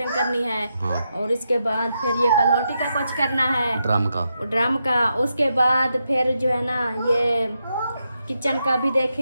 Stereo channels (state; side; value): inverted; both; correlation -0.84